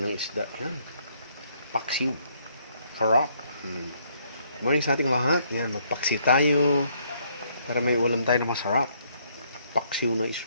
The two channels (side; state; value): both; inverted; correlation -0.68